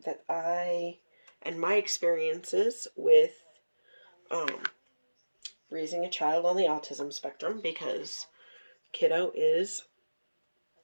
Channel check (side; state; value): both; inverted; correlation -1.00